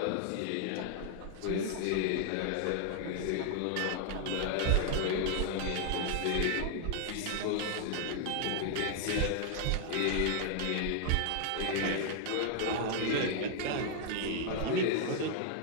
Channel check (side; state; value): both; different; correlation 0.00